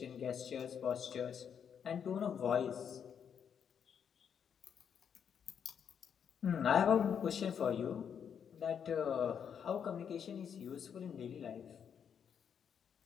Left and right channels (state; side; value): quieter; right; 7.8 dB